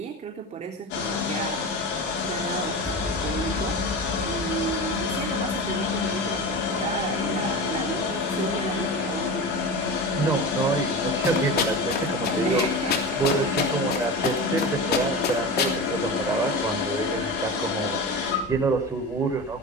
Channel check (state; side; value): normal; both; correlation 0.27